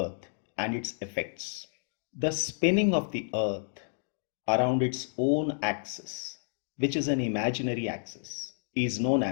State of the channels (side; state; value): right; silent; digital silence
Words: and its effects. The spinning of the earth around its own axis, which is an imaginary axis, is known